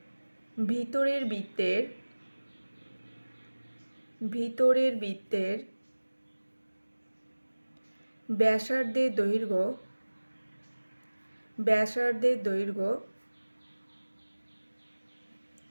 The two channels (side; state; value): both; inverted; correlation -1.00